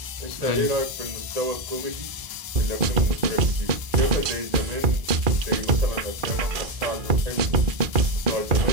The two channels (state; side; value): late; left; 1.7 ms